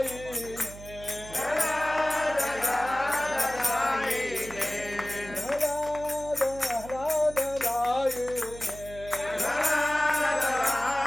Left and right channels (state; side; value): noise; right; hum, 15 dB below the sound